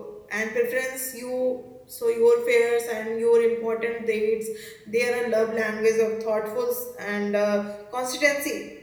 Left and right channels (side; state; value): both; identical; correlation 1.00